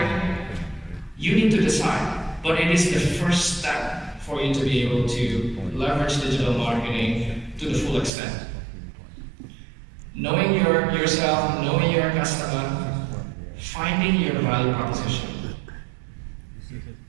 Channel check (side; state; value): left; drops out; at 8.1 s